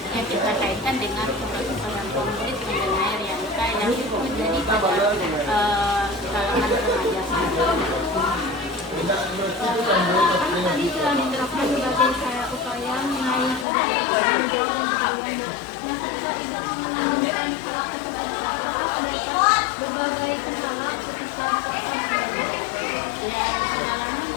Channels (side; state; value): right; drops out; at 13.7 s